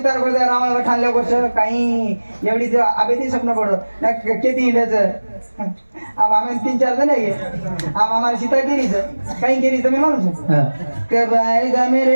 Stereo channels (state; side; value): inverted; both; correlation -1.00